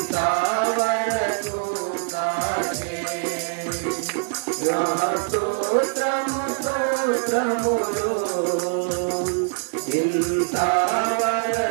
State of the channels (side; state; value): left; silent; digital silence